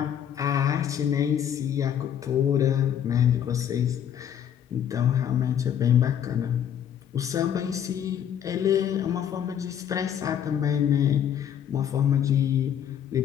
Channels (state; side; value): quieter; right; 9.3 dB